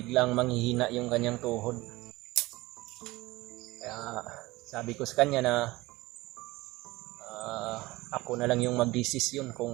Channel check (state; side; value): quieter; left; 20.1 dB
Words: manghihina yung kanyang tuhod. Kaya sabi ko sa kanya na ako na lang yung magdesisyon